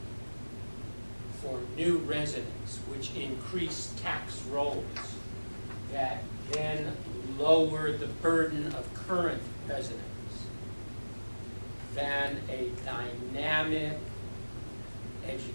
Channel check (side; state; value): both; inverted; correlation -1.00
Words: for new residents, which increase tax rolls that then lower the burden of current residents, than a dynamic